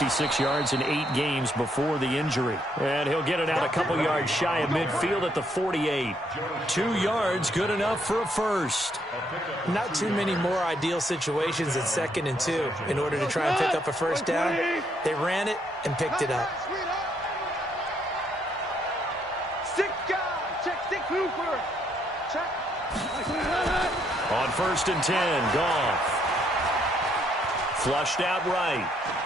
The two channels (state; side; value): normal; both; correlation 0.72